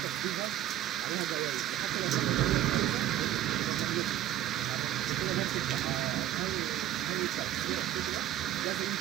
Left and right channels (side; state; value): left; quieter; 12.6 dB